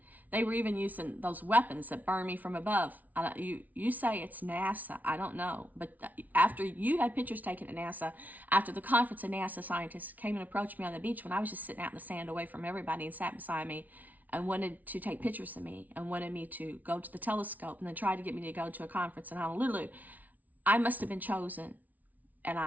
they were even using those weapons that burn me from above. You say it's NASA. I don't know. But after you had pictures taken at NASA, after the conference, a NASA scientist came and approached me on the beach when I was just sitting out in the sand away from everybody and sat beside me and wanted to take pictures of me and wanted me to go to the telescope and then tried to get me to go to a conference in Honolulu. I must have been chosen.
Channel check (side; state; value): left; late; 0.076 ms